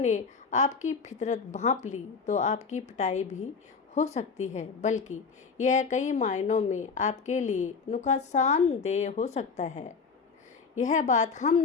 आपकी फितरत भांप ली तो आपकी पिटाई भी हो सकती है, बल्कि यह कई मायनों में आपके लिए नुकसानदेह हो सकता है। यह बात हम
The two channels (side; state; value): right; quieter; 5.1 dB